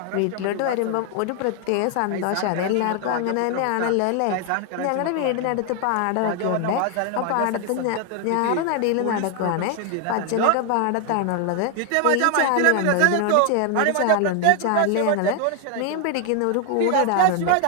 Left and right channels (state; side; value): different; both; correlation 0.00